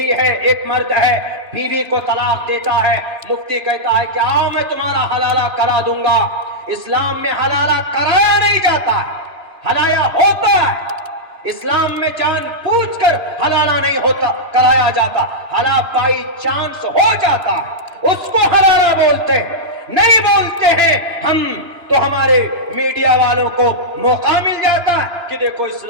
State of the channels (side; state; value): left; late; 2.9 ms